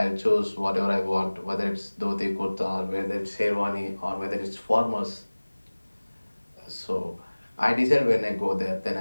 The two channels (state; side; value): inverted; both; correlation -1.00